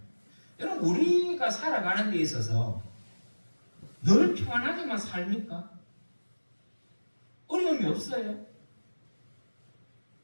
여러분 우리가 살아가는 데 있어서 늘 평안하게만 삽니까? 어려움이 없어요.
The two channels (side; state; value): both; inverted; correlation -1.00